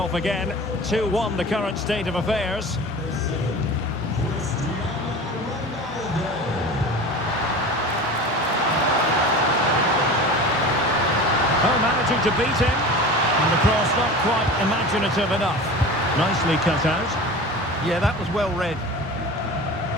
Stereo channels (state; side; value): normal; both; correlation 0.35